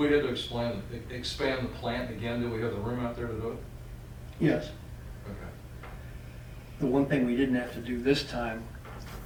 had to expand the plant again, do we have the room out there to do it? Yes. Okay. The one thing we didn't have to do this time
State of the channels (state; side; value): identical; both; correlation 1.00